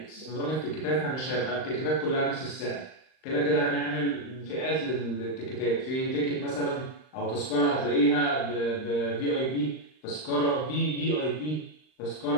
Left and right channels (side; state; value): right; late; 39 ms